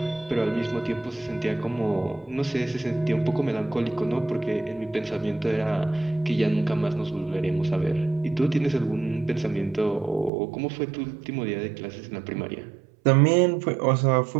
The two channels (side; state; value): left; drops out; at 10.3 s